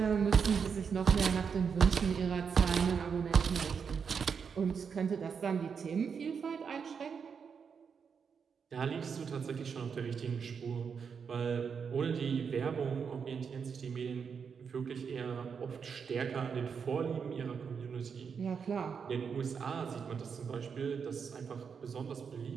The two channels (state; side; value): quieter; left; 6.4 dB